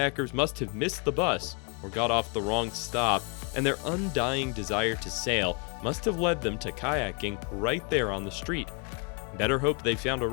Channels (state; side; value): quieter; right; 34.8 dB